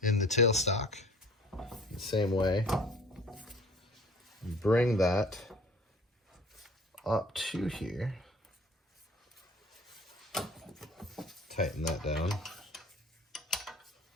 in the tailstock the same way. Bring that up to here, tighten that down.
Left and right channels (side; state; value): both; normal; correlation 0.49